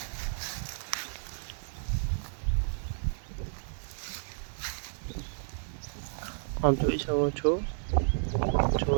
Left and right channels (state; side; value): silent; left; 57 dB below the other